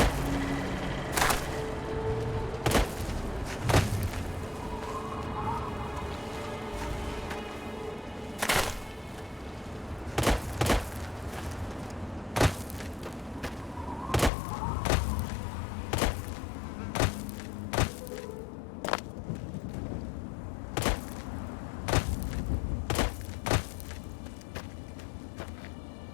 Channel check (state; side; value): drops out; right; at 14.3 s